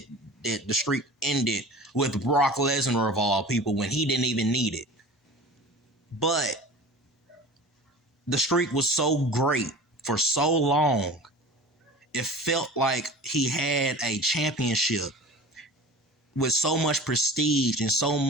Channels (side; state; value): both; normal; correlation 0.39